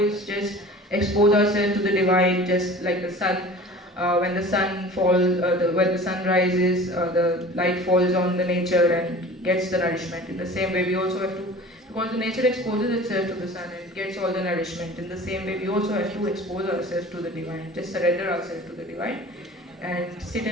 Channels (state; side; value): normal; both; correlation 0.42